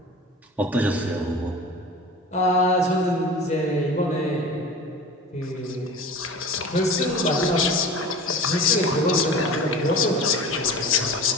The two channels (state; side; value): normal; both; correlation 0.36